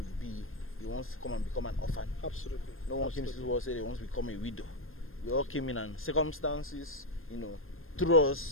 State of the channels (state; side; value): late; right; 0.60 ms